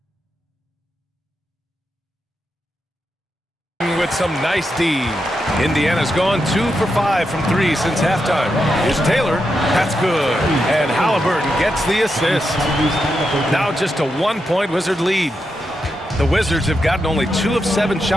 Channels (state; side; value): normal; both; correlation 0.86